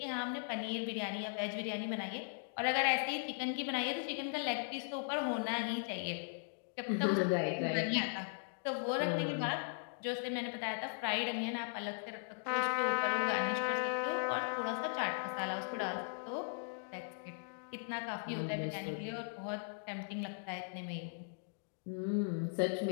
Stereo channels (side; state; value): right; silent; digital silence